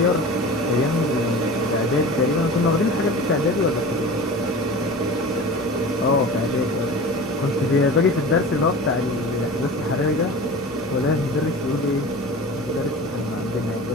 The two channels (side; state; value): both; normal; correlation 0.35